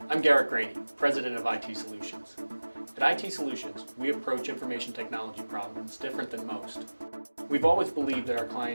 I'm Garrett Graney, President of IT Solutions. At IT Solutions, we approach information technology problems different than most. We've always believed that our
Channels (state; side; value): inverted; both; correlation -1.00